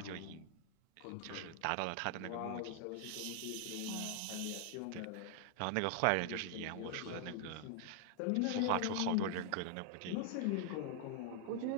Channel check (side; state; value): both; different; correlation 0.00